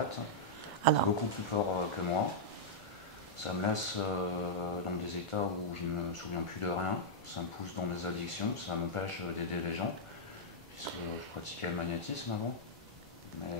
Alors, Beaucoup plus fort que moi. Ça me laisse dans des états où je ne me souviens plus de rien. Ça me pousse dans des addictions. Ça m'empêche d'aider les gens. Puisque je pratiquais le magnétisme avant.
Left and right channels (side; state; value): both; normal; correlation -0.07